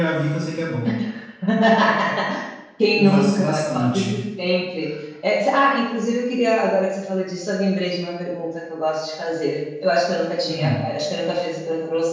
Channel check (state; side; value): identical; both; correlation 1.00